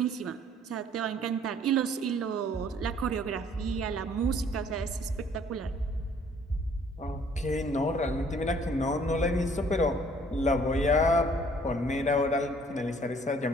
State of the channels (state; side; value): normal; both; correlation 0.58